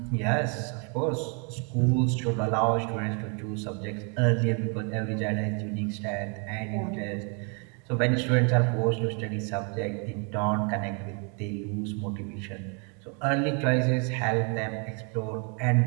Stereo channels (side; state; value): left; quieter; 37.1 dB